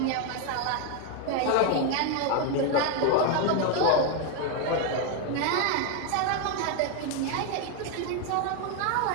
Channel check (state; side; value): different; both; correlation 0.01